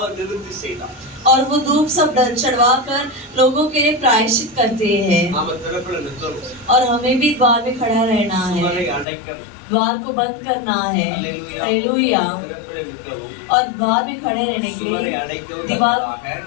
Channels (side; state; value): right; drops out; at 9.1 s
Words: நிவர்த்தி செய்தான்। और वो धूप सब चढ़वा कर लोगों के लिए प्रायश्चित करते हैं। நாம திறப்புல நிற்கிறோம், और हमें भी द्वार में खड़ा रहना है, சுவரை அடைக்கணும்। द्वार को बंद करना है। हालेलुया। हालेलुया। திறப்புல நிற்கவும், और द्वार में खड़े रहने के சுவரை लिए, அடைக்கவும் दीवार தக்கதாக